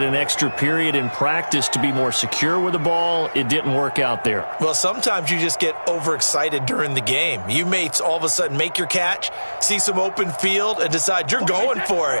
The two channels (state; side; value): inverted; both; correlation -1.00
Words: an extra period in practice to be more secure with the ball. It didn't work out there. Well, sometimes you just get overexcited during the game. You may all of a sudden make your catch, see some open field, and decide you're going for